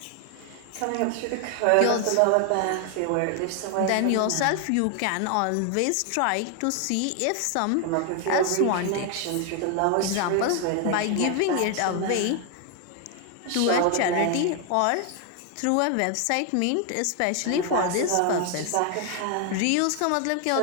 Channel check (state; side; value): different; both; correlation 0.00